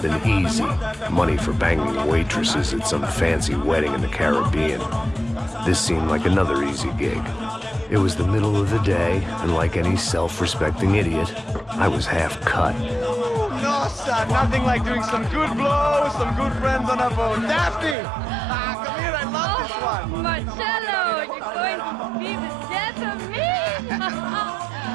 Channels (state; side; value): drops out; left; at 17.9 s